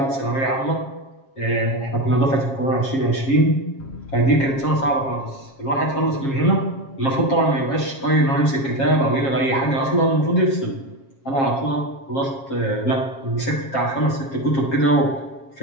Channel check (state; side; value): late; right; 7.4 ms